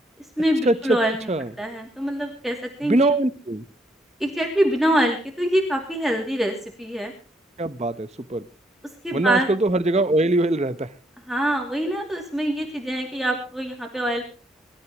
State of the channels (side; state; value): both; normal; correlation 0.72